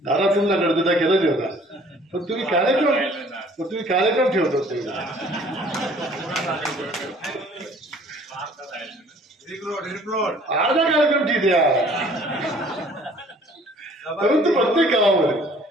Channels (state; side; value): normal; both; correlation 0.54